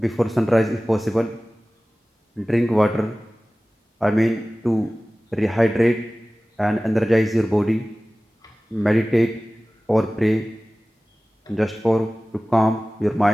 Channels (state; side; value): normal; both; correlation 0.97